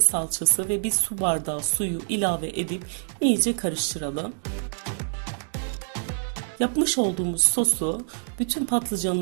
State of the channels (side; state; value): left; silent; digital silence